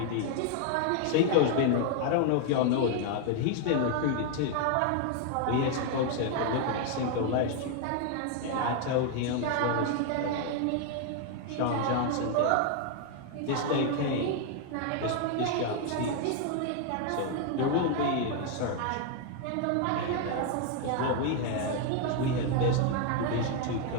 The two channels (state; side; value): different; both; correlation 0.00